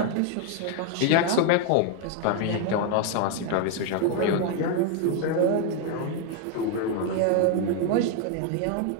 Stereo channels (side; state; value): both; different; correlation 0.01